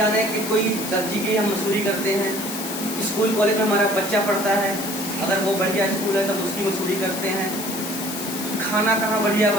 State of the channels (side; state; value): left; noise; hiss, 7 dB below the sound